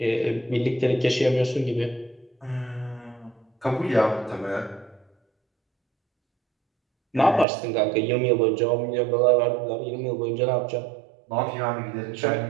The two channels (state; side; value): drops out; left; at 7.5 s